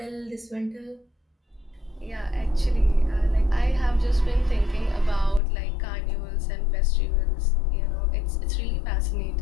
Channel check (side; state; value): right; drops out; at 5.4 s